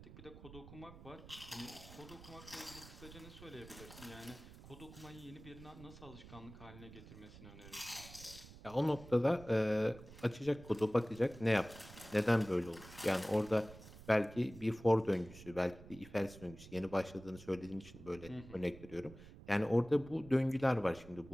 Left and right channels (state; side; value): noise; right; rumble, 17 dB below the sound